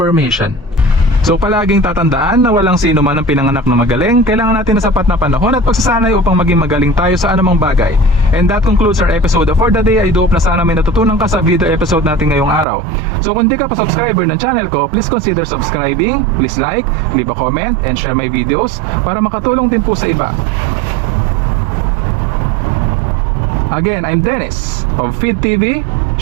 So palaging tatandaan na walang sino man ang pinanganak na magaling. Kailangan natin ng sapat na panahon at pagsasanay upang maging magaling tayo sa anumang bagay. And that concludes our episode for the day. I do hope na sana may natutunan ka sa video episode natin ngayong araw. So kung di ka pa subscriber ng channel ko, please consider subscribing. Please like, leave a comment, and share my videos para makatulong din po sa iba. Again, I'm Dennis of Feed TV,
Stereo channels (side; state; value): left; drops out; at 12.7 s